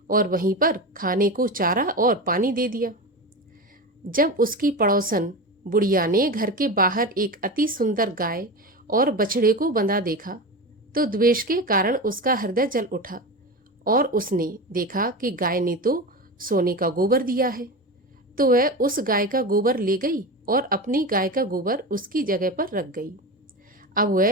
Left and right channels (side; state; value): both; normal; correlation 0.24